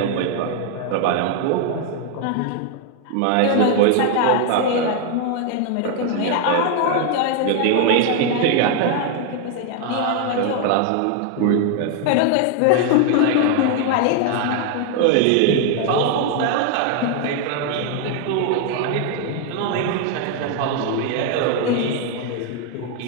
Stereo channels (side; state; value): both; different; correlation 0.00